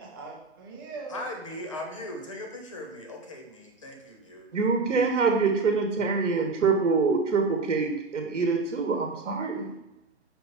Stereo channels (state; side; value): quieter; left; 4.0 dB